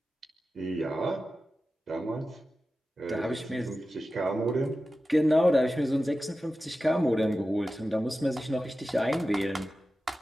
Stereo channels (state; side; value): normal; both; correlation 0.93